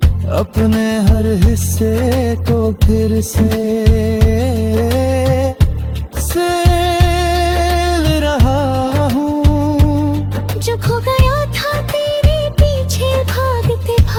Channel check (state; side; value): identical; both; correlation 1.00